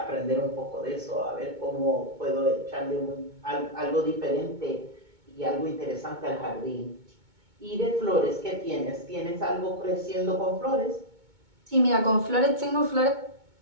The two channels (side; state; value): left; late; 2.2 ms